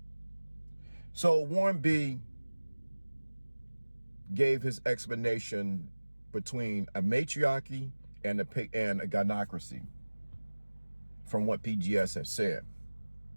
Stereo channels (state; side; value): inverted; both; correlation -1.00